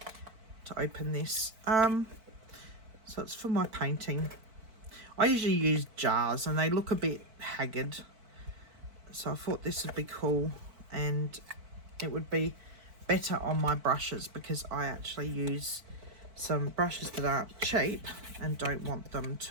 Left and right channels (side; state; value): left; late; 4.5 ms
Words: open this. So it's for my painting. I usually use jars and they look a bit haggard. So I thought this would be cool, and it would be better on my brushes because I actually use some brushes that aren't cheap and don't want them